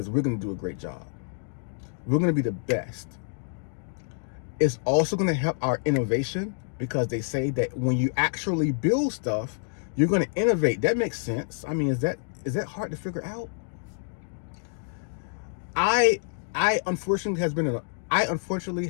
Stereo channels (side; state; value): right; silent; digital silence